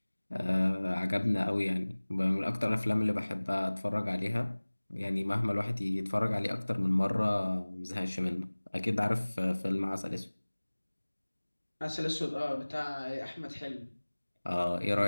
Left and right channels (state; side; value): inverted; both; correlation -1.00